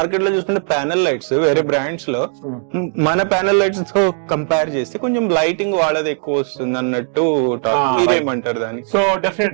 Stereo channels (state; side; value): silent; left; digital silence